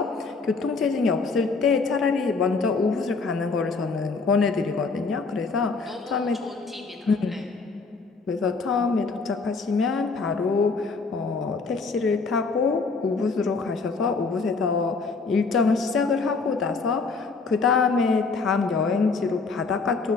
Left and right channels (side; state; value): right; quieter; 4.3 dB